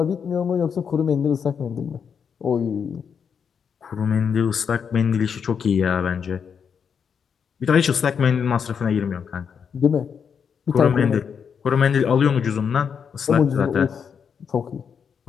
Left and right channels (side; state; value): right; quieter; 6.9 dB